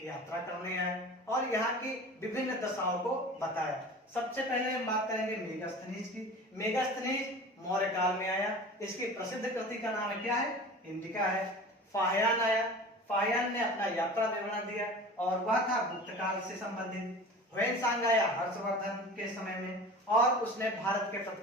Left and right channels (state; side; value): normal; both; correlation 0.38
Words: यात्रा करने आए और यहाँ की विभिन्न दशाओं को बताया। सबसे पहले हम बात करेंगे मेगास्थनीज की। मेगास्थनीज मौर्य काल में आया। इसकी प्रसिद्ध कृति का नाम क्या है? इंडिका है। फाहियान आया, फाहियान ने अपना यात्रा विवरण दिया और वह था गुप्त काल से संबंधित। ह्वेनसांग आया हर्षवर्धन के समय में और उसने भारत के